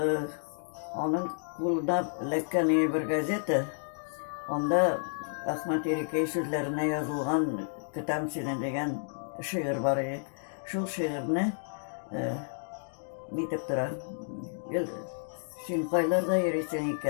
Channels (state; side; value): silent; right; digital silence